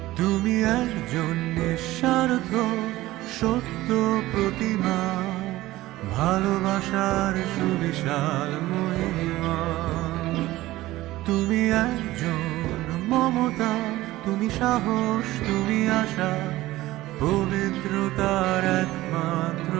তুমি একজন নিঃস্বার্থ সত্য প্রতিমা, ভালোবাসার সুবিশাল মহিমা। তুমি একজন মমতা, তুমি সাহস, তুমি আশা, পবিত্রতার একমাত্র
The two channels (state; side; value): quieter; left; 17.0 dB